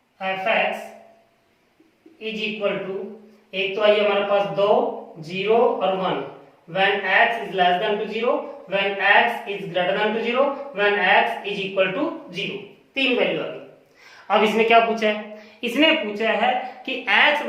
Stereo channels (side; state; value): both; identical; correlation 1.00